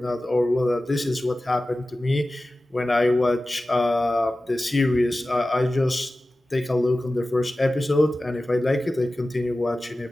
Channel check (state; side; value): normal; both; correlation 0.96